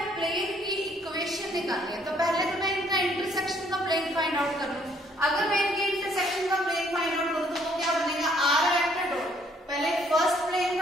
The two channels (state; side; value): normal; both; correlation 0.65